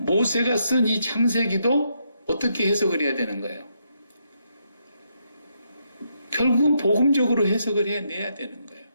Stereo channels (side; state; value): both; inverted; correlation -0.78